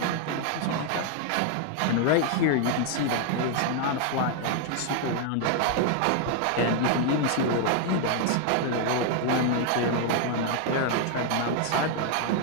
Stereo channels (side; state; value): both; different; correlation 0.00